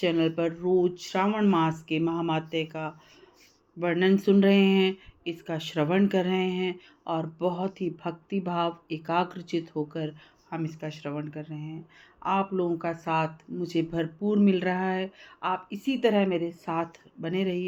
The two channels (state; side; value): identical; both; correlation 1.00